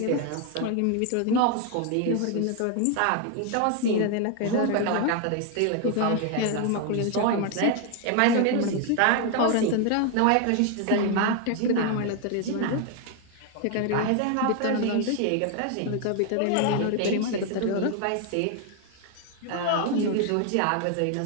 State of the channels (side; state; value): both; different; correlation 0.01